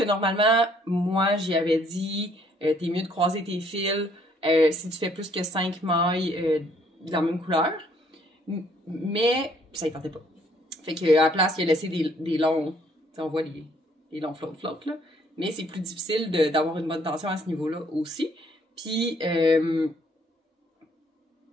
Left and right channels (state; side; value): normal; both; correlation 0.64